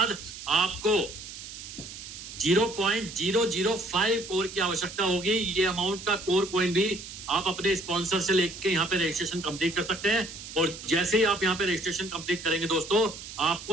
आपको 0.005 कोर की आवश्यकता होगी। ये अमाउंट का कोर कॉइन भी आप अपने स्पॉन्सर से लेके यहाँ पे रजिस्ट्रेशन कंप्लीट कर सकते हैं। और जैसे ही आप यहाँ पे रजिस्ट्रेशन कंप्लीट करेंगे दोस्तों,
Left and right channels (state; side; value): noise; right; hiss, 12 dB below the sound